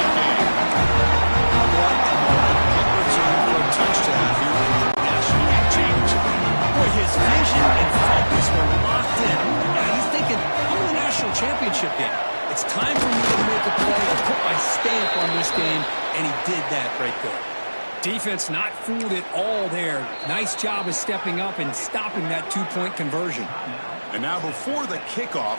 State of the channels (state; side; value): inverted; both; correlation -1.00